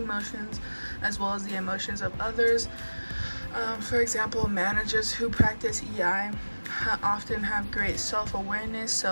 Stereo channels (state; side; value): inverted; both; correlation -1.00